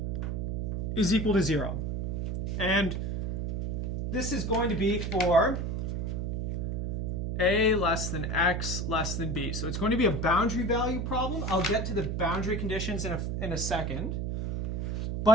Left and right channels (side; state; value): right; noise; hum, 1 dB below the sound